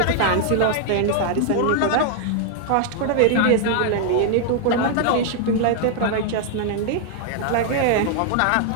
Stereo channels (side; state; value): both; different; correlation 0.00